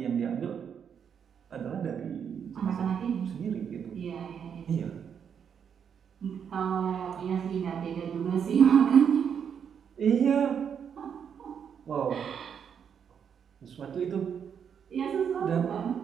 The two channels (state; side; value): quieter; left; 7.6 dB